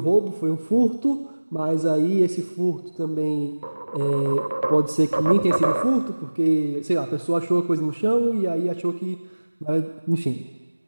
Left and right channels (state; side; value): inverted; both; correlation -1.00